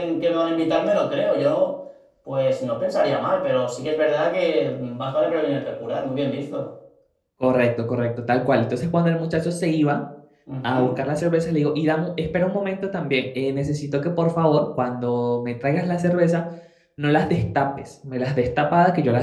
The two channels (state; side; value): identical; both; correlation 1.00